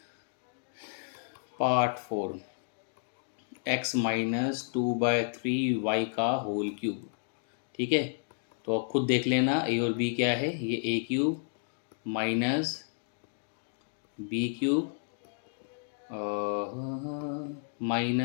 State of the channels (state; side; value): silent; right; digital silence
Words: Part 4, x minus 2/3y का होल क्यूब। ठीक है, तो अब खुद देख लेना a और b क्या है। ये a cube minus b cube